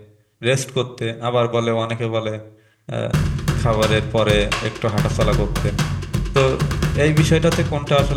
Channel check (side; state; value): both; identical; correlation 1.00